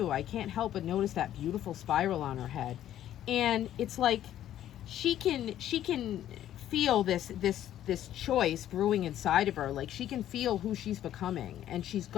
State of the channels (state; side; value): quieter; right; 11.8 dB